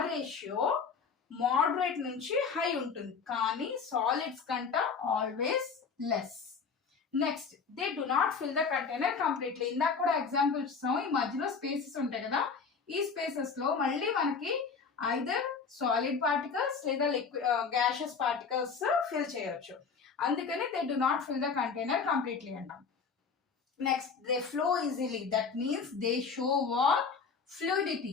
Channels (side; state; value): right; quieter; 5.5 dB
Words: రేషియో మోడరేట్ నుంచి హై ఉంటుంది, కానీ సాలిడ్స్ కంట always less. Next, they do not fill the container completely. ఇందాక కూడా ఎగ్జాంపుల్ ఇస్తాం, ఈ మధ్యలో స్పేసెస్ ఉంటాయి కదా, ఈ స్పేసెస్ లో మళ్ళీ మనకి ఐదర్ సాలిడ్ పార్టికల్స్ లేదా గ్యాషియస్ పార్టికల్స్ ఫిల్ చేయొచ్చు. అందుకని they do not fill the container completely అంటాం. Next, they flow easily. That means they show what?